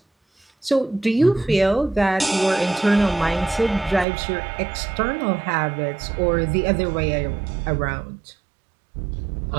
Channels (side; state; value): left; drops out; at 4.0 s